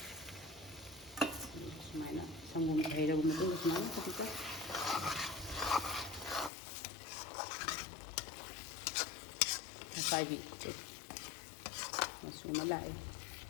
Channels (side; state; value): right; drops out; at 6.5 s